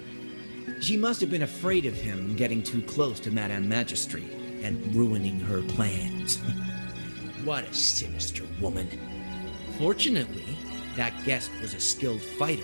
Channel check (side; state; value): both; inverted; correlation -1.00